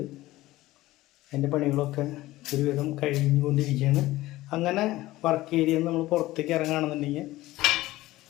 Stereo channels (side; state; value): right; quieter; 17.3 dB